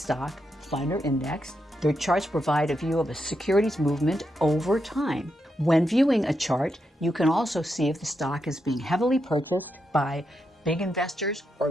fund, or index. The charts provide a view of a security's movement over time. When viewing a chart, you can also see if the stock is being heavily purchased by big investors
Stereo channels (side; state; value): both; normal; correlation 0.84